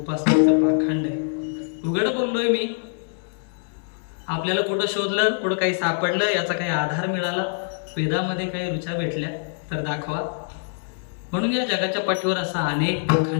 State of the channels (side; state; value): right; silent; 60 dB below the other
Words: पाखंड आहे. उघड बोललोय मी. आपल्याला कुठं शोधलं, कुठं काही सापडलं, याचा काही आधार मिळाला, वेदामध्ये काही रुचा भेटल्या तर दाखवा. म्हणून या जगाच्या पाठीवर असा अनेक